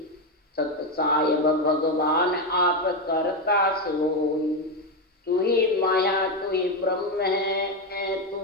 सतसायब भगवान आप करता सोई। तू ही माया तू ही ब्रह्म है,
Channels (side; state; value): both; normal; correlation 0.09